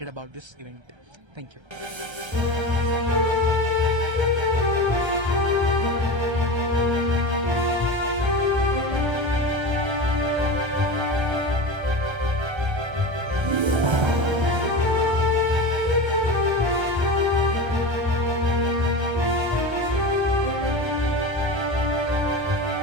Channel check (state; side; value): late; left; 1.3 ms